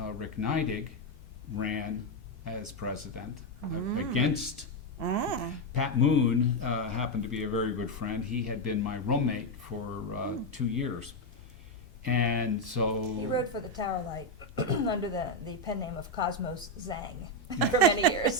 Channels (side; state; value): both; normal; correlation 0.05